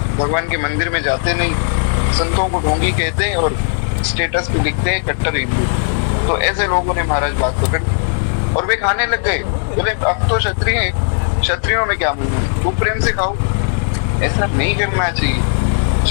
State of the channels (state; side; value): silent; right; digital silence